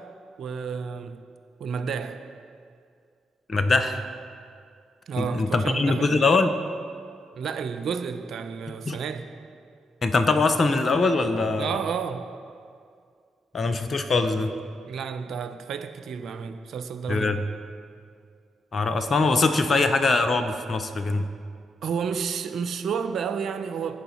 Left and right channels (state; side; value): normal; both; correlation 0.81